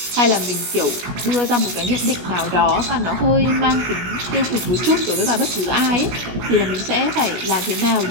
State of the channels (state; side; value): late; left; 17 ms